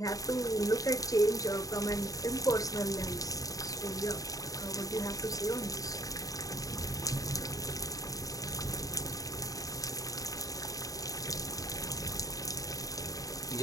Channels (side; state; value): right; late; 0.17 ms